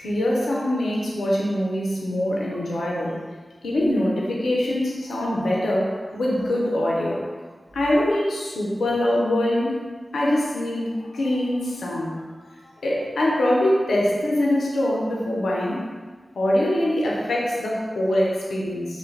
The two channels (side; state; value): both; normal; correlation 0.94